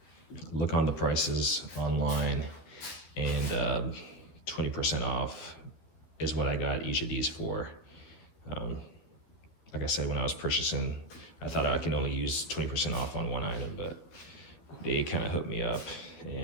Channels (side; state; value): right; late; 13 ms